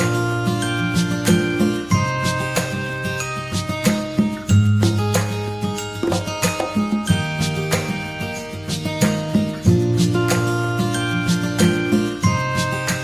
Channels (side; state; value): left; noise; hum, 23 dB below the sound